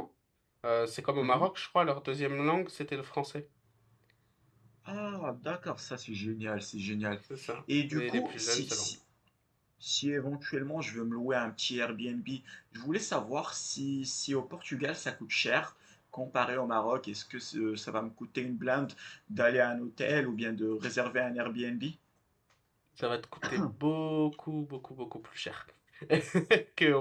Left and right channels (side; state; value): both; identical; correlation 1.00